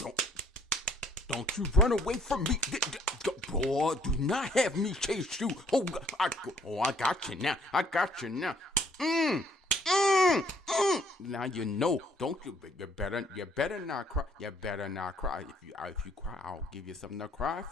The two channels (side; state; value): both; normal; correlation 0.63